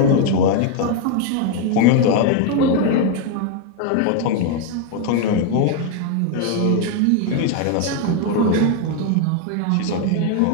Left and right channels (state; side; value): different; both; correlation 0.01